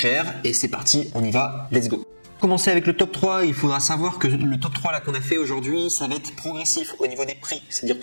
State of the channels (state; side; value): inverted; both; correlation -1.00